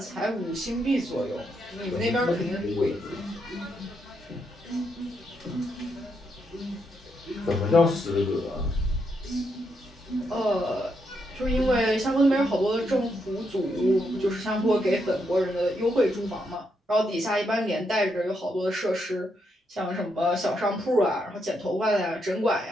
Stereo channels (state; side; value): normal; both; correlation 0.79